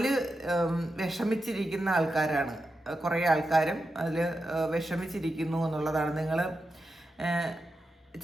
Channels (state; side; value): normal; both; correlation 0.89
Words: വിഷമിച്ചിരിക്കുന്ന ആൾക്കാരാണ് കുറേ ആൾക്കാരും അതിൽ വിഷമിച്ചിരിക്കുന്നു എന്നുള്ളതാണ്. നിങ്ങൾ